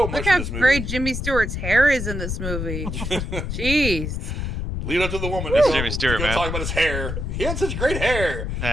much in this movie. Look how great Jimmy Stewart's hair is in this movie. Jeez. Leave it up to the woman That's Jimmy Stewart, man. Talk about his hair. He had such great hair.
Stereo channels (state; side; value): noise; left; rumble, 3 dB below the sound